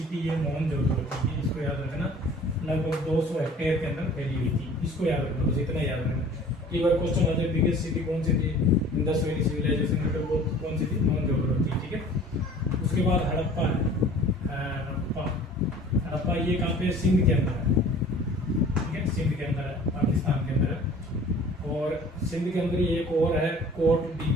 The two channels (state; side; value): normal; both; correlation 0.47